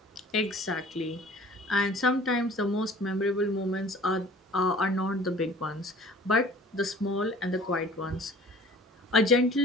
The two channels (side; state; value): both; normal; correlation 0.48